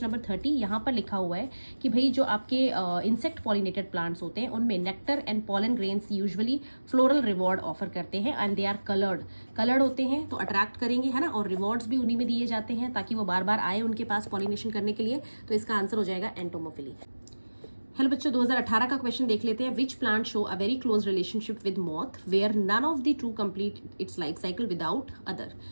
नंबर 30। यहाँ पर लिखा हुआ है कि भाई जो आपके इंसेक्ट पॉलिनेटेड प्लांट्स होते हैं उनमें nectar and pollen grains usually floral reward offer करते हैं एंड दे आर कलर्ड होते हैं, तो अट्रैक्ट करेंगे, है ना। और रिवॉर्ड्स भी उन्हीं में दिए जाते हैं ताकि वो बार बार आए उनके पास पॉलिनेशन करने के लिए। तो इसका आंसर हो जाएगा एंटोमोफिली। हेलो बच्चों, 2018 का क्वेश्चन देख लेते हैं। Which plant show a very close relationship with moth where none of the two complete its life cycle without other.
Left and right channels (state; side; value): inverted; both; correlation -1.00